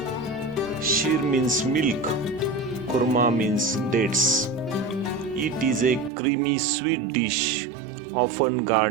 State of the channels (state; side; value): drops out; left; at 6.1 s